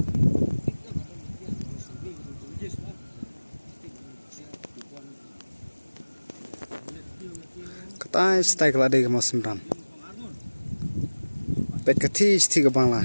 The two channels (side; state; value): both; inverted; correlation -1.00